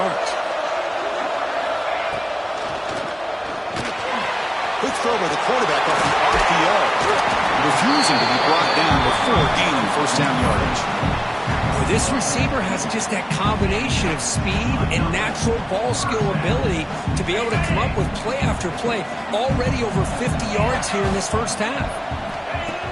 Quick throw by the quarterback off the RPO. Refusing to be brought down before gaining first down yardage. Well, this receiver has just that combination of speed and natural ball skill ability to be able to come up with play after play. Already over 50 yards here in this first half.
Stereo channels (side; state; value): both; identical; correlation 1.00